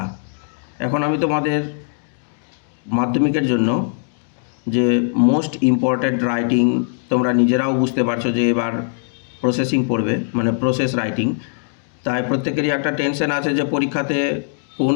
এখন আমি তোমাদের মাধ্যমিকের জন্য যে মোস্ট ইম্পর্ট্যান্ট রাইটিং, তোমরা নিজেরাও বুঝতে পারছো যে এবার প্রসেসিং পড়বে, মানে প্রসেস রাইটিং। তাই প্রত্যেকেরই একটা টেনশন আছে যে পরীক্ষাতে কোন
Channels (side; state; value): right; silent; digital silence